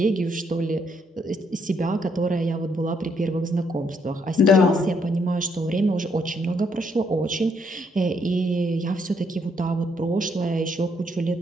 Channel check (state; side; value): normal; both; correlation 0.73